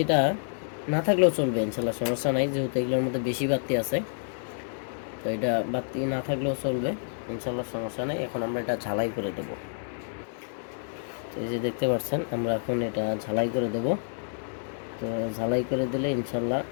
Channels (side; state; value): right; silent; digital silence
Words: না থাকলেও চলবে ইনশাল্লাহ, সমস্যা নাই, যেহেতু এগুলোর মধ্যে বেশি বাতি আছে। তো এটা বাতি না থাকলেও চলবে ইনশাল্লাহ, সমস্যা নেই। এখন আমরা এটা ঝালাই করে দেব। তো এই যে দেখতে পাচ্ছেন আমরা এখন এটা ঝালাই করে দেব। তো ঝালাই করে দিলে ইনশাল্লাহ